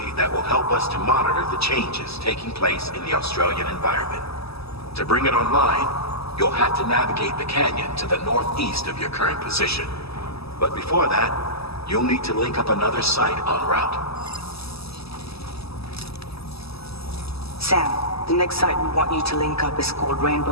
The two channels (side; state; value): right; late; 0.78 ms